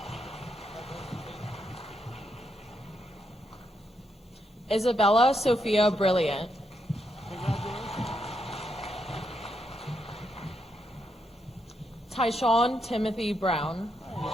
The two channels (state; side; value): normal; both; correlation 0.80